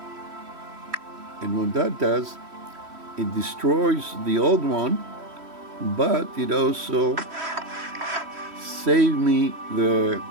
And what that does, it destroys the old one, but it also saved me the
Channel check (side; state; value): left; late; 3.1 ms